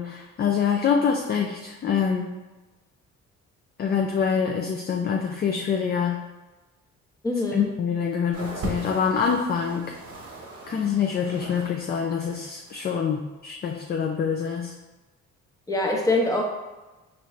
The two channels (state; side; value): quieter; right; 5.4 dB